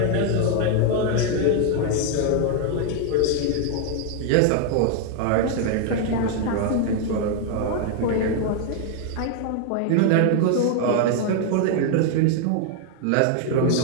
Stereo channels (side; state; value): both; different; correlation 0.00